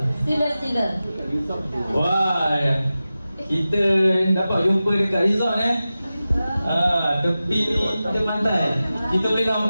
Sila. Wah, kita dapat jumpa dekat resort tepi ni pantai. Kita boleh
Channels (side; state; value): both; inverted; correlation -0.94